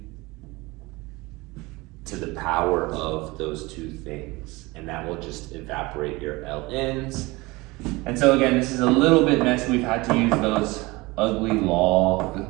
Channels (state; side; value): quieter; left; 22.8 dB